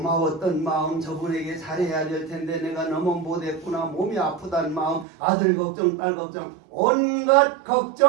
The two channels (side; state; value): left; drops out; at 5.1 s